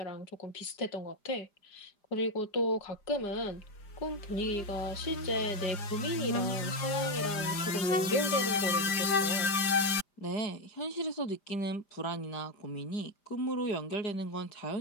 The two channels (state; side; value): late; right; 5.0 ms